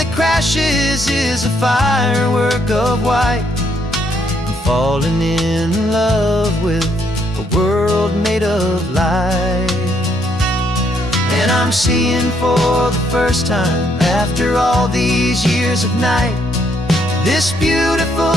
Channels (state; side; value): normal; both; correlation 0.72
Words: crashes is a firework of white. I'm falling in love with a world made of light. And I'm seeing for the first time, after all these years of night, this